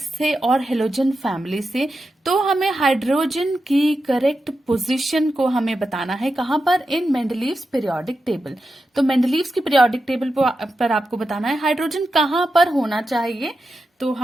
से और हेलोजन फैमिली से, तो हमें हाइड्रोजन की करेक्ट पोजीशन को हमें बताना है कहां पर, इन मेंडलीव्स पीरियोडिक टेबल। तो मेंडलीव्स की पीरियोडिक टेबल पर आपको बताना है हाइड्रोजन कहां पर होना चाहिए। तो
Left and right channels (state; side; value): normal; both; correlation 0.89